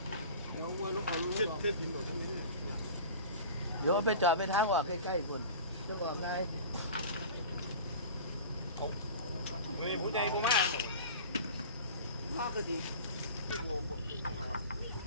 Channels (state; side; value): inverted; both; correlation -0.37